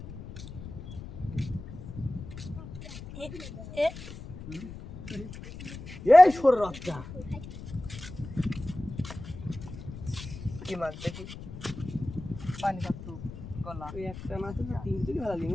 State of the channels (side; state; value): left; noise; rumble, 12 dB below the sound